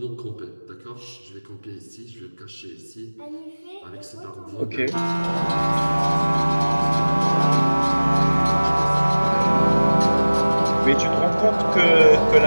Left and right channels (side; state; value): both; inverted; correlation -1.00